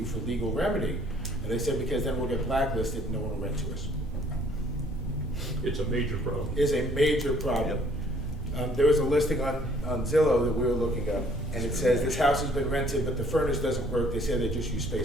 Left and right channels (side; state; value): both; normal; correlation 0.60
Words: for legal remedy? And they said, because then we'll get blacklisted and no one will rent to us. It's a major problem. Is a major problem. There was a listing on Zillow that we were looking up, and it says this house has been rented, but the furnace doesn't work. They say they just use